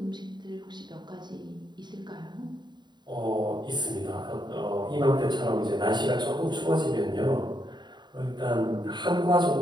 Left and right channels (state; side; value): late; left; 0.21 ms